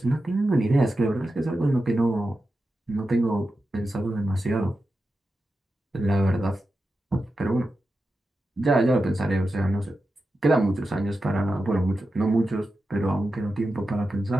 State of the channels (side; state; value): both; normal; correlation 0.91